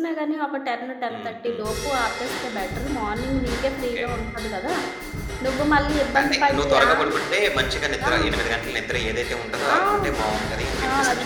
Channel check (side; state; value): both; identical; correlation 1.00